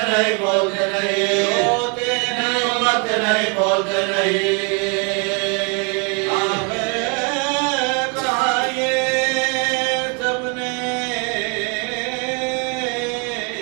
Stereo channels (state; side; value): quieter; left; 33.0 dB